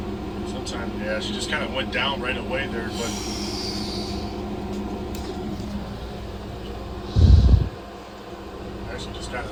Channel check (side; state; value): both; identical; correlation 1.00